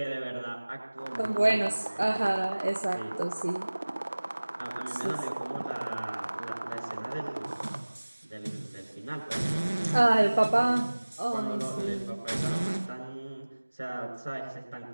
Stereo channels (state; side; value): inverted; both; correlation -1.00